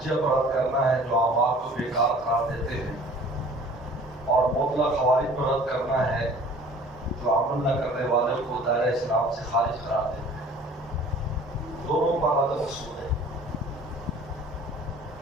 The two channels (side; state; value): both; normal; correlation 0.49